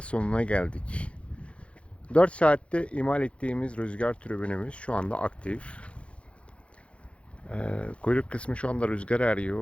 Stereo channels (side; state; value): right; late; 0.061 ms